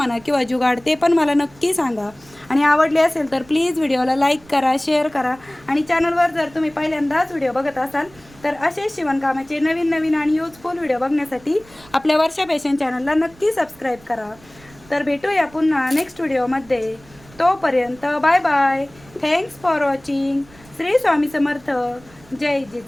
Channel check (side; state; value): right; noise; rumble, 25 dB below the sound